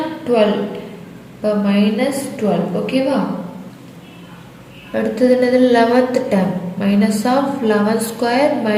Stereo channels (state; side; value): identical; both; correlation 1.00